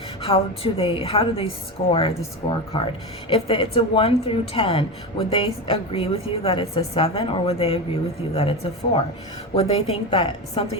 How do they score the scorecard? If it's a 1 through 10, would they agree with you that it's a 7, or would they agree with you that it's a 4? Would they think that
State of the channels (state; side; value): normal; both; correlation 0.20